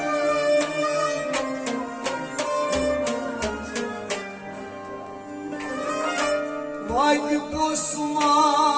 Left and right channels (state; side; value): identical; both; correlation 1.00